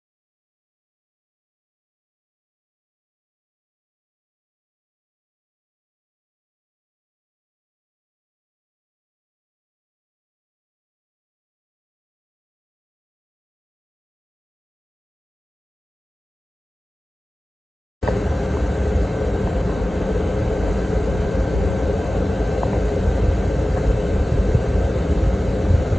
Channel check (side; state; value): both; normal; correlation 0.96